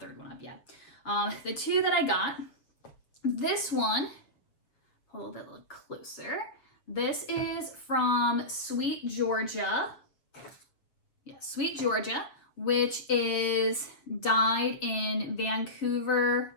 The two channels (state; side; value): late; right; 7.1 ms